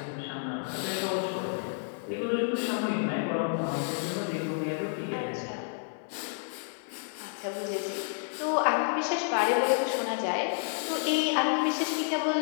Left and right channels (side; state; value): right; silent; 55 dB below the other